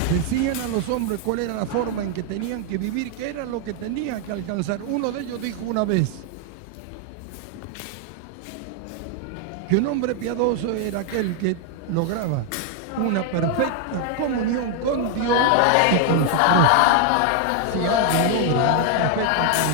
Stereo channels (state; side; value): different; both; correlation 0.00